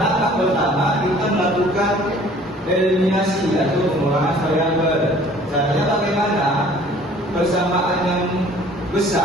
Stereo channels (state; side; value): normal; both; correlation 0.52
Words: pertama kita melakukan eliminasi atau pengurangan variabel. Caranya bagaimana? Persamaan yang